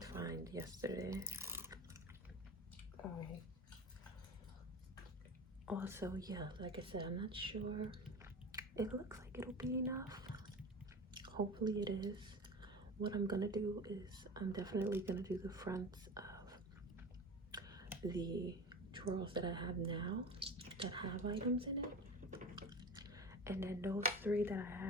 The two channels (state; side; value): normal; both; correlation 0.32